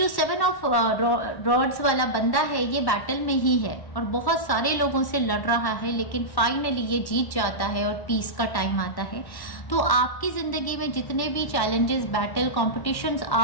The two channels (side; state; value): right; late; 1.1 ms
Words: 7 ऑफ रॉड्स वाला बंदा है ये बैटल में ही है और बहुत सारे लोगों से लड़ रहा है, लेकिन फाइनली ये जीत जाता है और पीस का टाइम आता है। तो आपकी जिंदगी में जितने भी चैलेंजेस, बैटल, कॉम्पिटिशन्स